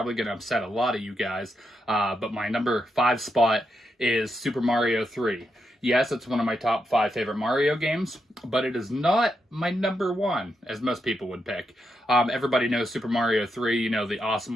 going to upset a lot of you guys, but my number 5 spot is Super Mario 3. Yes, it's one of my top 5 favorite Mario games, but it is not my number 1, as most people would pick. Everybody knows Super Mario 3, you know, the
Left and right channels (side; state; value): both; normal; correlation 0.83